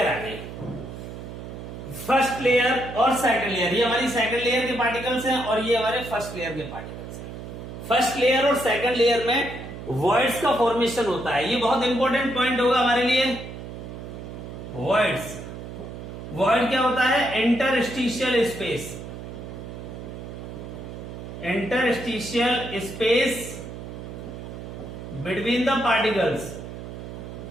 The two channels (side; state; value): right; noise; hum, 10 dB below the sound